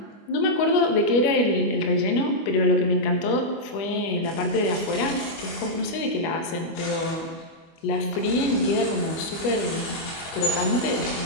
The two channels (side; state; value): right; late; 24 ms